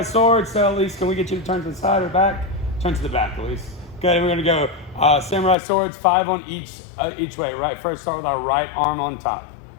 sword. So Elise, can we get you to turn to the side or back? Turn to the back, Elise. Okay, we're gonna go samurai swords, 5 on each way. Right, first start with our right arm on top.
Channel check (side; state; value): right; drops out; at 5.6 s